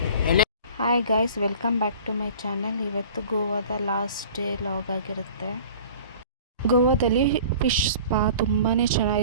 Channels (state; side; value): inverted; both; correlation -0.45